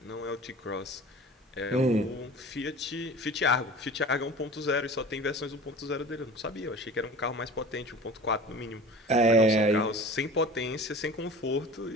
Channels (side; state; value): both; normal; correlation 0.39